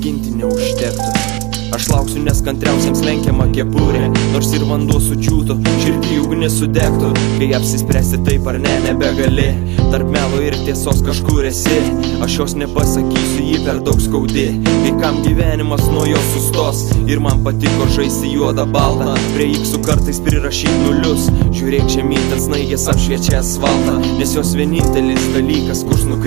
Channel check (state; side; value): quieter; left; 22.4 dB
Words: neužtektų. Aš lauksiu, nes kantriausiams lenkiama kepurė. Nors ir vanduo sudžiūtų, širdį ugnis sudegtų. Kai apsispręsti taip ar ne, nebegali. Tarp melo ir tiesos kažkur esi. Aš jos nepasakysiu, jį per daug skaudi. Kai kam gyvenimas nuo jo sustos. Ir man patiko žaisti juodą baltą. Prie iksų kartais prirašyt nulius. Žiūrėk žemyn, ten snaigės apšviečia asfaltą. Nes jos vienintelis dalykas, kurs